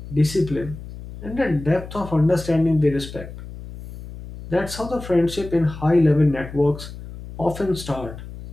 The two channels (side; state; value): left; noise; hum, 13 dB below the sound